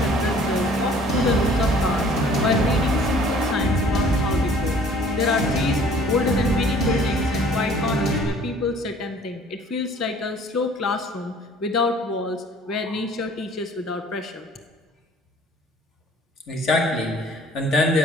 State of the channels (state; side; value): normal; both; correlation 0.53